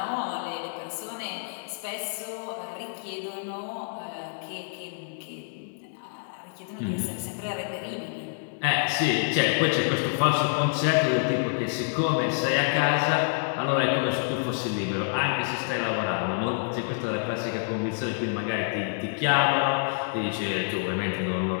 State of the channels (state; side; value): silent; right; digital silence